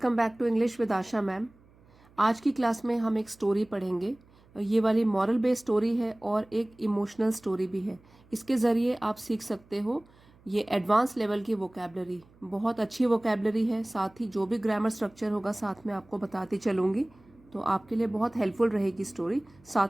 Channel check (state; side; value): noise; right; hum, 28 dB below the sound